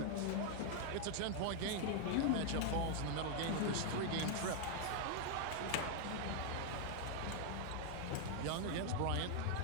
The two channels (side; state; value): both; different; correlation 0.00